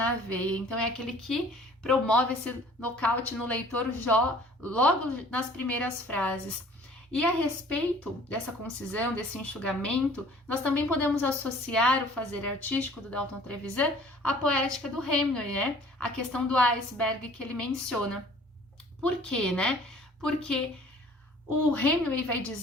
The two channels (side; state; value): both; normal; correlation 0.52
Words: veia. Então é aquele que promove esse nocaute no leitor logo nas primeiras frases. E a respeito dessa concisão, desse enxugamento, nós também podemos associar o fazer artístico do Dalton Trevisan à poética do Hemingway, né? A questão do iceberg que ele menciona. Por quê, né? Porque o Hemingway vai